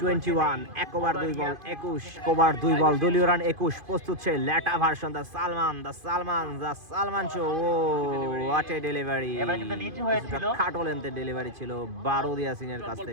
21, 1 ওভার 2 বল 21, কোবরার 2 বল, দলীয় রান 21। প্রস্তুত সেই লেটা version, the Salman show. Oh what a delivery! খাটো লেন্থের ডেলিভারি ছিল বারুদ ইয়াসিনের কাছ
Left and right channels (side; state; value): left; late; 2.5 ms